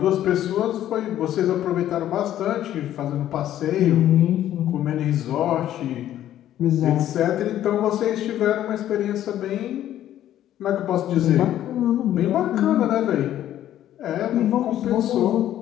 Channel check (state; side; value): quieter; right; 12.1 dB